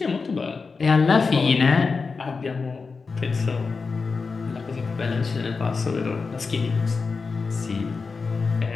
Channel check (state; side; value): quieter; right; 4.6 dB